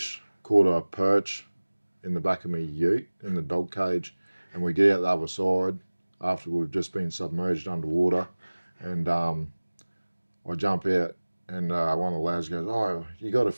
caught a perch in the back of my ute in the dog cage, and we get out the other side after we've just been submerged underwater, and I jump out, and one of the lads goes, "Oh, you got a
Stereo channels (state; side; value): inverted; both; correlation -1.00